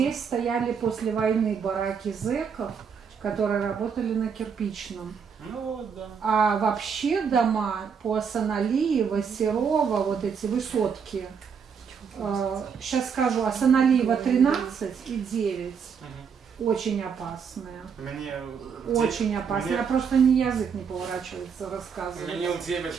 стояли после войны бараки зэков, которые работали на кирпичном. Ну вот, да. А вообще дома по Асаналиева, Серова, вот эти высотки, сейчас скажу, Асаналиева 13 и 9. Очень опасные. Очень опасные. Я просто язык не поворачивается рассказывать. Мне у 9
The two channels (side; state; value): left; quieter; 6.5 dB